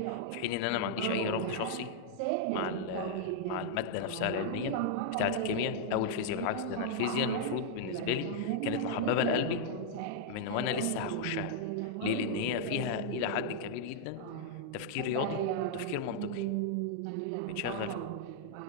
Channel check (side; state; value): both; different; correlation -0.01